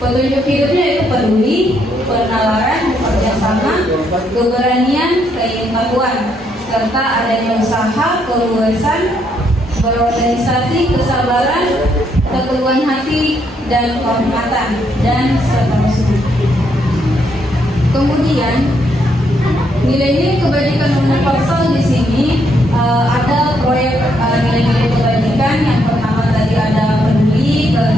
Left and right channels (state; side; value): normal; both; correlation 0.74